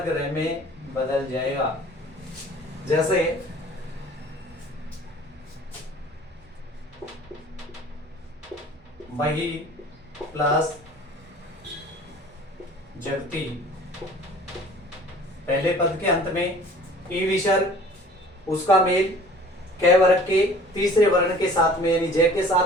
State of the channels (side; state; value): both; normal; correlation 0.48